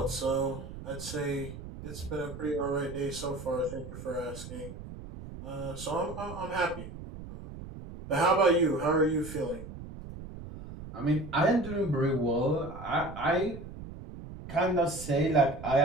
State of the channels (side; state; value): right; noise; rumble, 12 dB below the sound